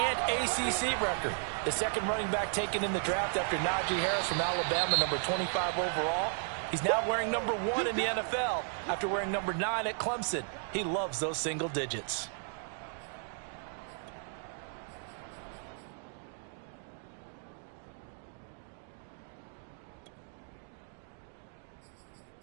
ACC record. The 2nd running back taken in the draft after Najee Harris from Alabama, number 25 overall. He's now wearing number 1 in the NFL after wearing number 9 at Clemson. He loves those single digits.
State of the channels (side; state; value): left; silent; 55 dB below the other